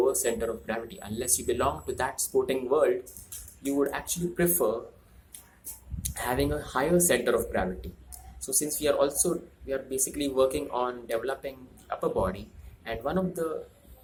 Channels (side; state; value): both; identical; correlation 1.00